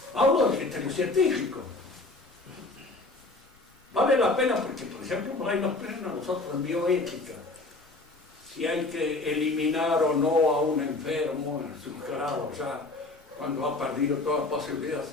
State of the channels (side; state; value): right; quieter; 3.1 dB